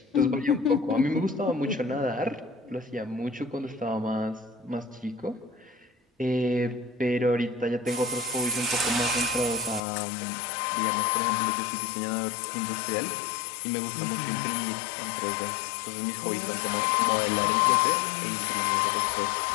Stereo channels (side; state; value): right; drops out; at 9.8 s